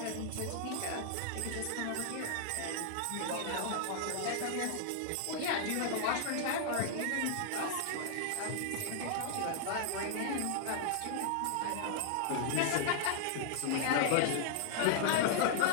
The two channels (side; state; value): both; different; correlation -0.01